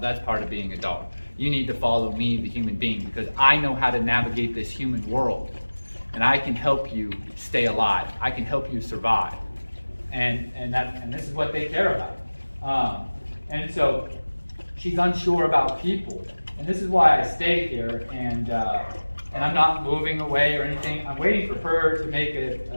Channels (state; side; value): inverted; both; correlation -1.00